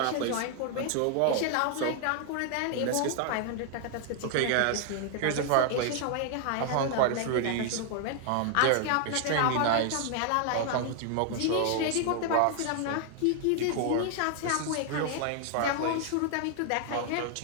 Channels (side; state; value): both; different; correlation 0.00